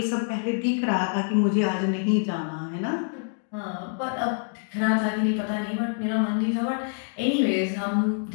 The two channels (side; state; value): right; silent; 61 dB below the other